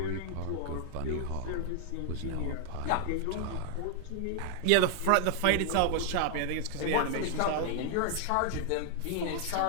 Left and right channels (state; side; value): different; both; correlation 0.00